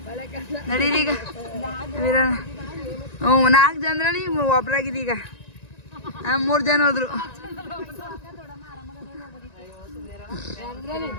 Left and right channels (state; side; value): late; right; 1.9 ms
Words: ನಡೀರಿ ಈಗ 4 ಜನರಲ್ಲಿ ಒಬ್ರಾಗಿದ್ದೀಗ. 3 ಜನ ಹೋದ್ರು.